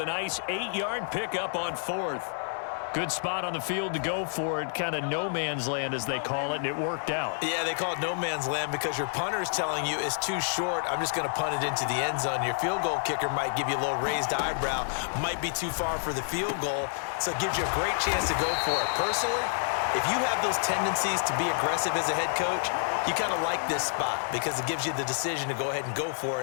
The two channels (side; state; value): right; silent; 59 dB below the other